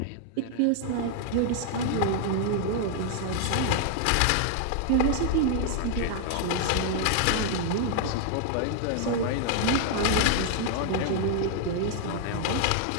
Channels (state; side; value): different; both; correlation 0.00